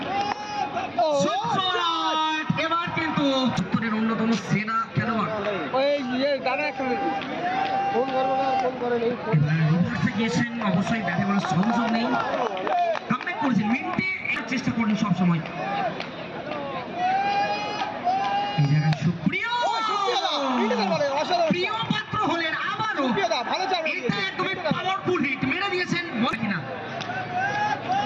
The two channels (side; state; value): both; identical; correlation 1.00